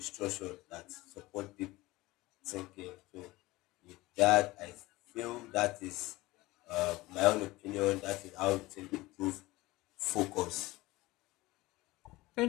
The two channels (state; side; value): quieter; right; 19.8 dB